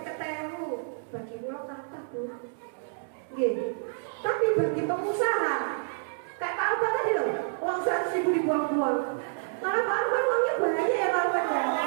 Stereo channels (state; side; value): silent; left; digital silence